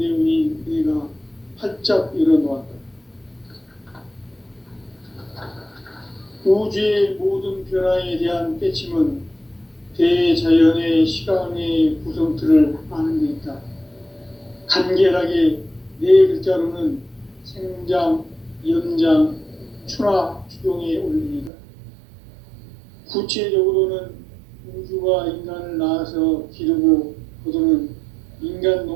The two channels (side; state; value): left; drops out; at 21.5 s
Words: 내가 활짝 열어놓았다. 우주의 모든 변화에 대한 깨침은 대자연의 시간의 구성틀을 아는 데 있다. 간결하게 네 글자로는 생장, 연장, 추나 추동에 올립니다. 구체적으로는 우주가 인간을 낳아서 기르고 거두는 인간